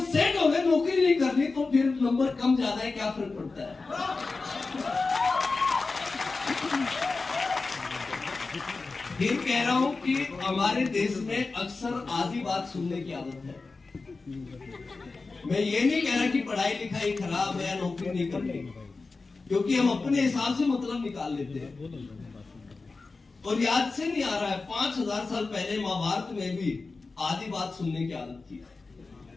सेट हो गए नौकरी नहीं करनी। तो फिर नंबर कम ज्यादा है क्या फर्क पड़ता है। फिर कह रहा हूं कि हमारे देश में अक्सर आधी बात सुनने की आदत है। मैं ये नहीं कह रहा कि पढ़ाई लिखाई खराब है या नौकरी नहीं करनी, क्योंकि हम अपने हिसाब से मतलब निकाल लेते हैं। और याद से नहीं आ रहा है 5000 साल पहले महाभारत में भी आधी बात सुनने की आदत थी।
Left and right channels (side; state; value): right; quieter; 3.9 dB